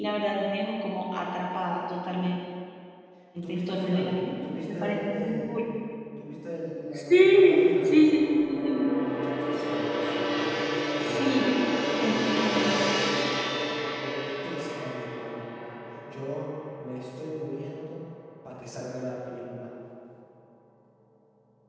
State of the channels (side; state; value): both; identical; correlation 1.00